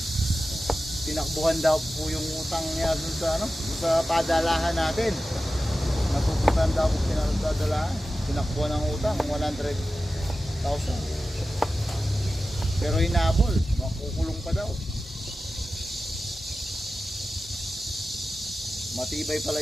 Tinakbuhan daw po yung utang niya dun sa ano, dun sa padalahan natin. Napupuntahan daw po pinadalahan. Tinakbuhan ng utang, 100,000. Pero hinabol, makukulong pa daw. Matibay pala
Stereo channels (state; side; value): normal; both; correlation 0.94